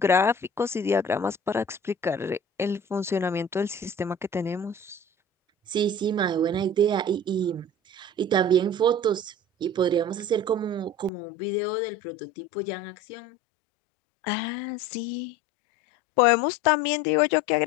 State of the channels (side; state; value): right; drops out; at 11.1 s